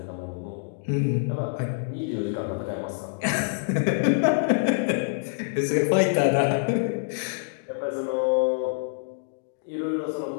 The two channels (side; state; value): right; silent; digital silence